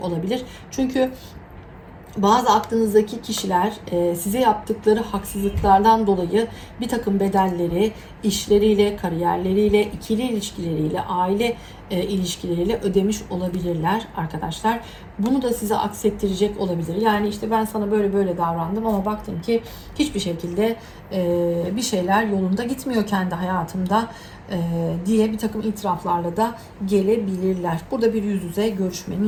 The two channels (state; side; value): identical; both; correlation 1.00